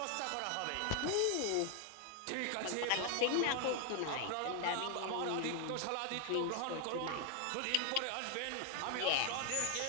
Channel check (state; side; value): different; both; correlation 0.00